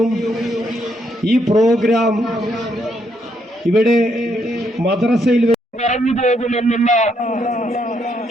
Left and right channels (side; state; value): both; normal; correlation 0.75